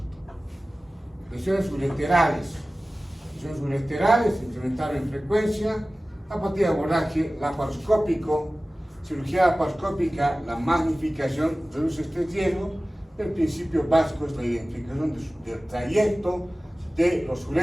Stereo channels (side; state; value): both; normal; correlation 0.97